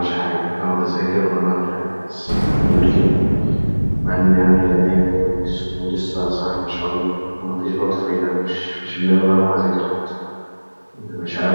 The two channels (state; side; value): inverted; both; correlation -1.00